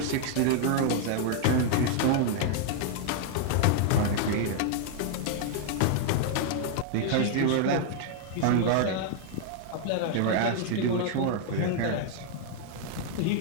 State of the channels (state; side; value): different; both; correlation -0.01